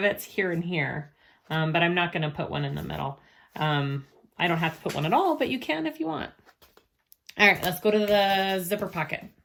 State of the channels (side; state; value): both; identical; correlation 1.00